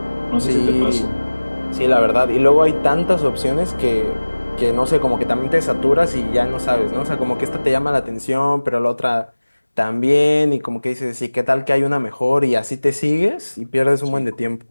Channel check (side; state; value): both; inverted; correlation -1.00